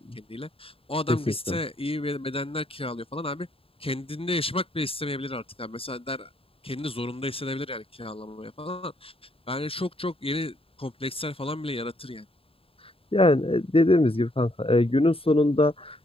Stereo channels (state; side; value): late; right; 0.27 ms